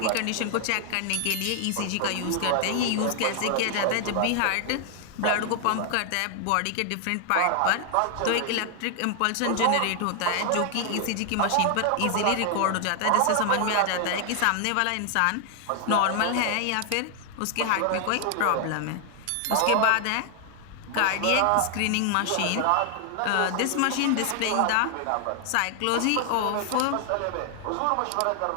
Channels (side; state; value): both; different; correlation 0.00